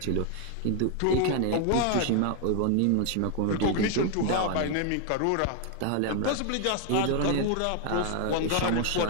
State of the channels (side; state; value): both; different; correlation 0.01